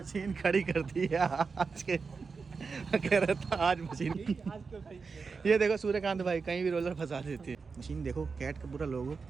खड़ी कर दी है आज के कह रहा था आज मशीन ये देखो सूर्यकांत भाई कहीं भी रोलर फंसा देती है। मशीन देखो कैट का पूरा लोगो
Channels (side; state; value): left; quieter; 4.9 dB